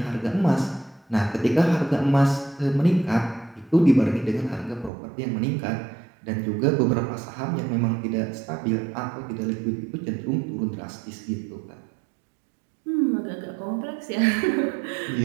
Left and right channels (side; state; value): left; drops out; at 4.9 s